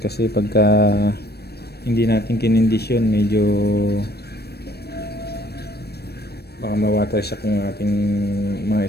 Kasi pagka hindi natin kinondisyon, medyo baka ma-water shock yung ating mga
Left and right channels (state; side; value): late; right; 0.47 ms